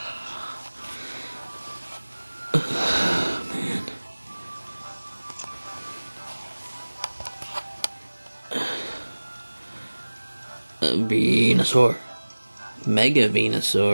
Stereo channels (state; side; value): inverted; both; correlation -1.00